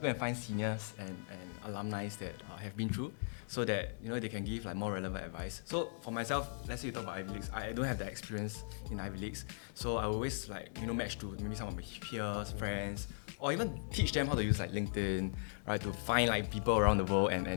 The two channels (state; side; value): silent; right; digital silence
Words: and find seniors and alumni that have been through, so that, you know, they can give like more relevant advice. So for myself, let's say you talk about Ivy Leagues, I don't have that experience in Ivy Leagues, so I always like, you know, match to maybe some of my peers, friends, or even teach them how to use like LinkedIn, right, to find like people around the world